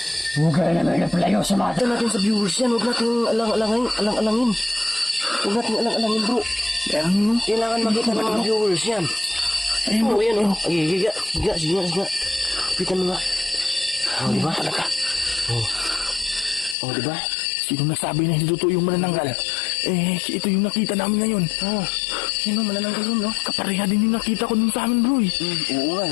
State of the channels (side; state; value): right; drops out; at 16.8 s